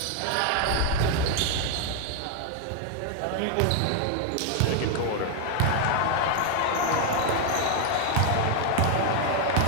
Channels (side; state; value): both; different; correlation 0.00